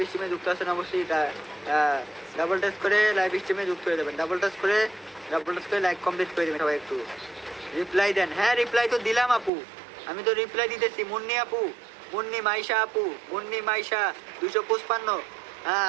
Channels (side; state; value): left; drops out; at 9.5 s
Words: স্ট্রিমে যুক্ত আছেন, অবশ্যই ডাবল টাচ করে লাইভ স্ট্রিমে যুক্ত হয়ে যাবেন, ডাবল টাচ করে লাইক কমপ্লিট করে দেবেন। সবাই একটু রিপ্লাই দেন। হ্যাঁ রিপ্লাই তো দিলাম আপু, আমি তো রিপ্লাই দিতেছি। মুন্নি আপু, মুন্নি মাইশা আপু, মুন্নি মাইশা 255, হ্যাঁ